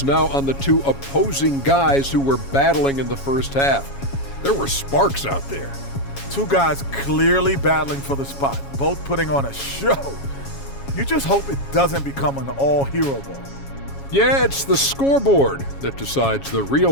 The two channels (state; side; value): late; right; 7.2 ms